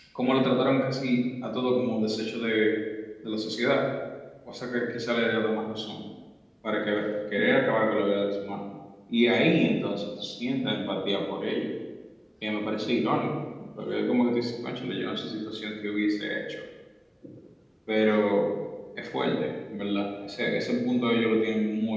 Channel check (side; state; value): both; identical; correlation 1.00